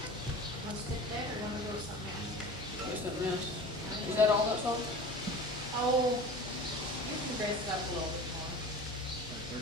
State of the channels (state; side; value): normal; both; correlation 0.37